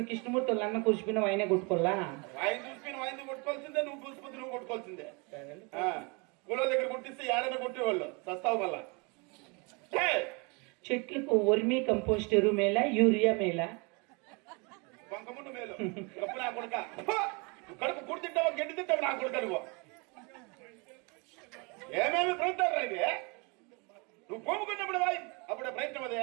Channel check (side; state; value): left; quieter; 30.8 dB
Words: కృష్ణమూర్తి వాళ్ళు అన్న కూర్చుపోయినా ఆయనే కొట్టుకోవాలా? ఆయన చూసిపోయిన ఆయన కొట్టుకోవాల్సిందే, నువ్వు చూసిపోతే నువ్వు కొట్టుకోవాల్సిందే. కూలో దగ్గర కొట్టిస్తే ఏడైనా కొట్టేవాళ్ళు సస్తావు వల్ల. చెట్లకు వర్మీ కంపోస్ట్ ఎరువు మేలా యూరియా మేలా? వంకముండు మేలు. కప్పు నా కొడుక కడుపు కుడి తింటావా గడ్డి తింటావు నా కొడుక నువ్వు ఏమేమి ప్రయత్నాలు రైతే నువ్వు పోముకున్నప్పుడు బాయ్ అప్పుడే ప్రయత్నం అదే.